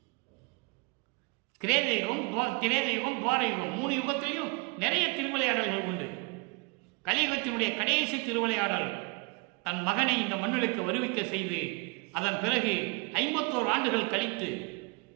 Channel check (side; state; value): left; quieter; 29.2 dB